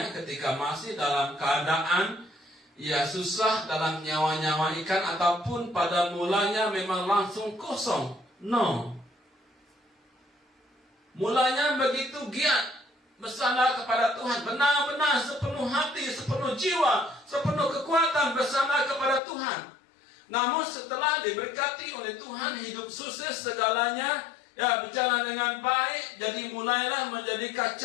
ketika masih dalam keadaan susah dalam nyawa-nyawa ikan ataupun pada mulanya memang langsung kosong. No. Mulanya begitu giat bersandar kepada Tuhan. Benar-benar sepenuh hati, sepenuh jiwa, sepenuh kekuatan bersandar kepada Tuhan. Namun setelah diberkati oleh Tuhan, hidup sukses segalanya, berjalan dengan baik, jadi mulailah menjadi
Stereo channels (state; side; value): drops out; right; at 19.2 s